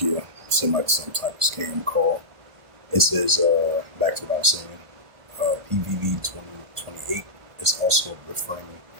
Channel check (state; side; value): late; left; 1.5 ms